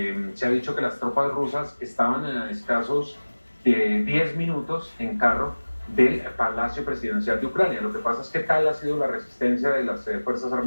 se ha dicho que las tropas rusas estaban a escasos 10 minutos en carro del Palacio Presidencial de Ucrania. Lo que pasa es que tal ha sido la resistencia de las Fuerzas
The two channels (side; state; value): both; inverted; correlation -1.00